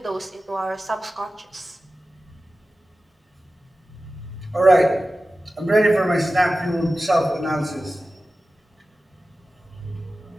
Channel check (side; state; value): both; normal; correlation 0.95